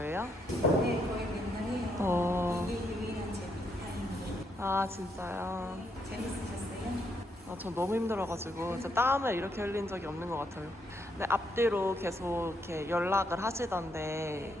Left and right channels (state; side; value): normal; both; correlation 0.76